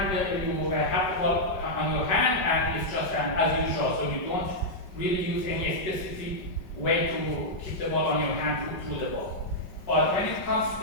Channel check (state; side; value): late; right; 5.2 ms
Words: you have the ball on your hand and it's just as usual. So you don't really use any specific way to keep the ball on your hand through the ball. But when it comes to